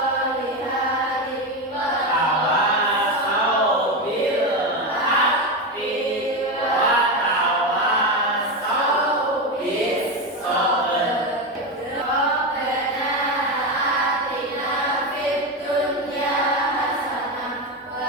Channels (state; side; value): normal; both; correlation 0.14